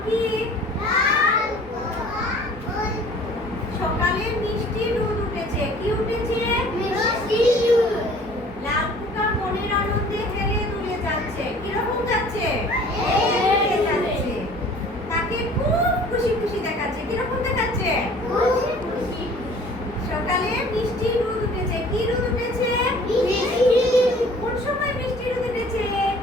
কি? সকালে মিষ্টি রোদ উঠেছে। কি উঠেছে? লাল পোকা মনের আনন্দে হেলে দুলে যাচ্ছে। কিরকম যাচ্ছে? হেলে যাচ্ছে। তাকে খুব খুশি খুশি দেখাচ্ছে। কিরকম দেখাচ্ছে? সকালে মিষ্টি রোদ উঠেছে। কি রোদ উঠেছে? কোন সময় মিষ্টি রোদ উঠেছে?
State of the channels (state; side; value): normal; both; correlation 0.50